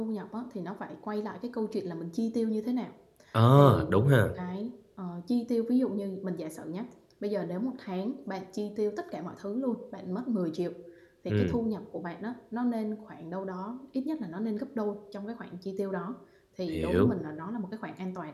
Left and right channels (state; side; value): identical; both; correlation 1.00